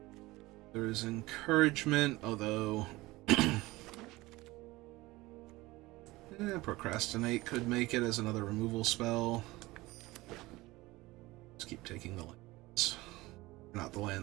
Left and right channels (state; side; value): quieter; left; 20.1 dB